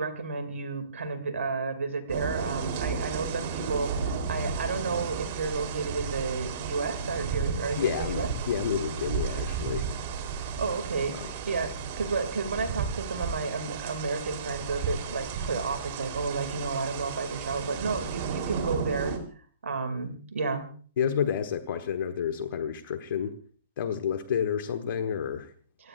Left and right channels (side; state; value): both; inverted; correlation -0.54